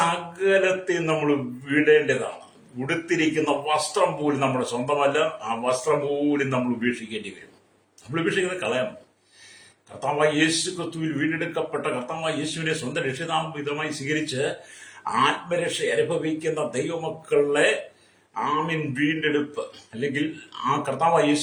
നമ്മൾ വിടേണ്ടതാണ്. ഉടുത്തിരിക്കുന്ന വസ്ത്രം പോലും നമ്മുടെ സ്വന്തമല്ല. ആ വസ്ത്രം പോലും നമ്മൾ ഉപേക്ഷിക്കേണ്ടി വരും. നമ്മൾ ഉപേക്ഷിക്കുന്നത് കളയണം. കർത്താവായ യേശു ക്രിസ്തുവിൽ വീണ്ടെടുക്കപ്പെട്ട കർത്താവായ യേശുവിനെ സ്വന്തം രക്ഷിതാവിധമായി സ്വീകരിച്ച് ആത്മരക്ഷ അനുഭവിക്കുന്ന ദൈവമക്കളെ വീണ്ടെടുപ്പ്, അല്ലെങ്കിൽ ആ കർത്താവായ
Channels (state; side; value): identical; both; correlation 1.00